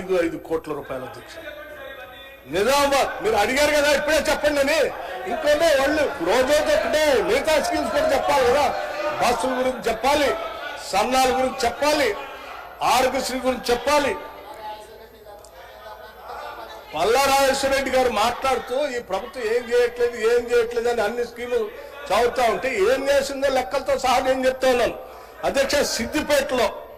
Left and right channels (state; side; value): identical; both; correlation 1.00